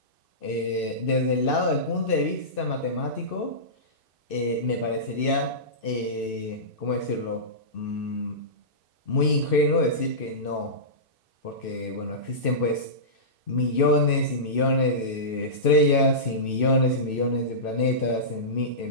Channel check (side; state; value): right; late; 2.6 ms